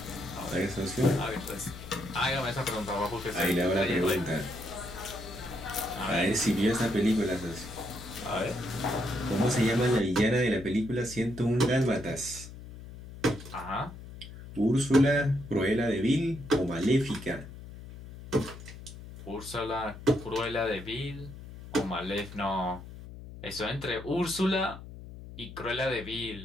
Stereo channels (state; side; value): noise; left; hum, 14 dB below the sound